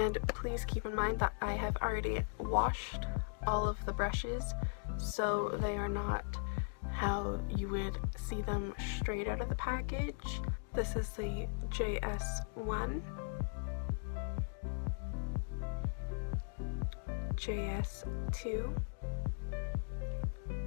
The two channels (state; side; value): silent; right; digital silence